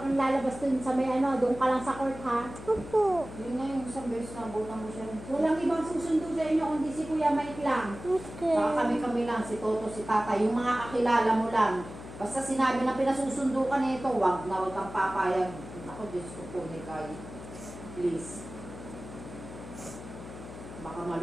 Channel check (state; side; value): noise; left; hum, 13 dB below the sound